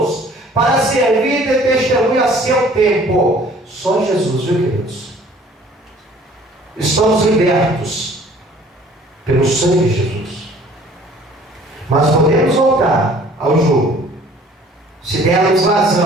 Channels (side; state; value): both; normal; correlation 0.53